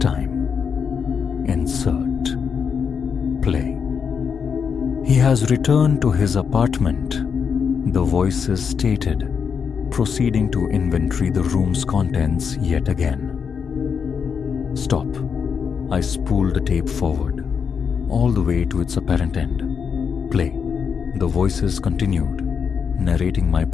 time. Insert. Play. He has returned to his apartment, the voices stated, proceeding to inventory the room's contents yet again. Stop. I spooled the tape forward, all the way to its apparent end. Play. The voices continued, narrating my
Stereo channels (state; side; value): quieter; right; 6.5 dB